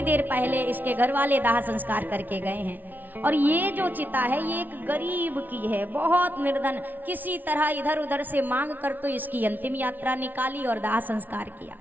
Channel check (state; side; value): late; left; 0.084 ms